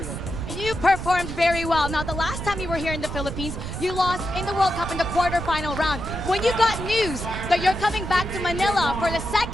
You performed very well. Now, the last time you were here in the Philippines, you lost in the World Cup in the quarterfinal round. When you got news that you're coming back to Manila for the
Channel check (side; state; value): right; noise; rumble, 7 dB below the sound